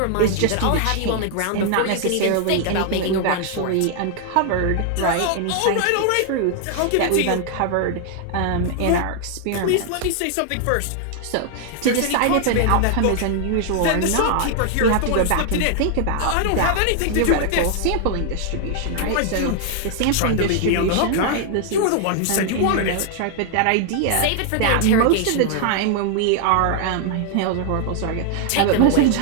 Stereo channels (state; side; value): different; both; correlation 0.00